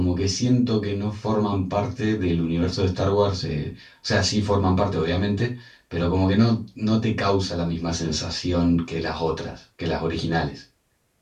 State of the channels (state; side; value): identical; both; correlation 1.00